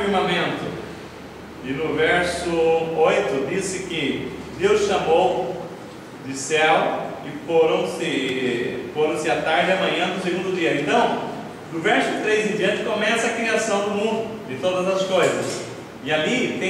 E no verso 8 disse que Deus chamou de céu, e foram-se a tarde e amanhã do segundo dia. Então, do verso 3 em diante começa a criação do mundo, de todas as coisas. E ali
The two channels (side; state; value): both; identical; correlation 1.00